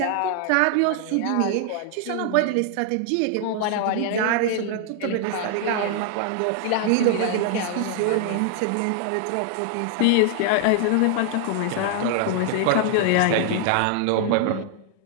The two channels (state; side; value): different; both; correlation 0.00